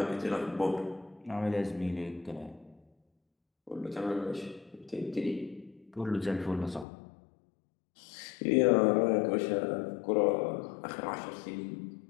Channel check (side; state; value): right; drops out; at 6.9 s